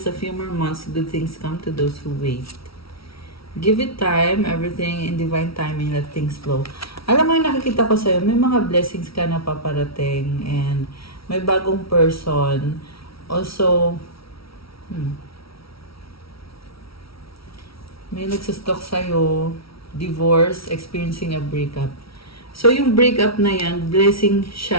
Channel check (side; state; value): right; late; 0.75 ms